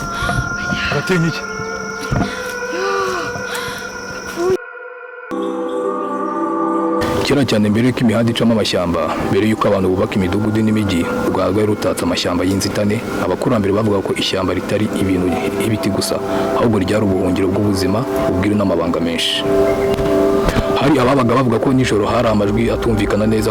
Aratinya iki? Kera cyane mbere yuko imihanda icamo amashyamba, mbere yuko abantu bubaka imidugudu n'imijyi, u Rwanda rwari rutatse amashyamba y'inzitane. Abakurambere bavuga ko ishyamba ritari ibintu ibiti gusa, ahubwo ryari ubuhungiro bw'ubuzima, ubwiru n'amabanga menshi. Hari ababaga bavuga ko nijoro hari amajwi atumvikana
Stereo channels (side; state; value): both; identical; correlation 1.00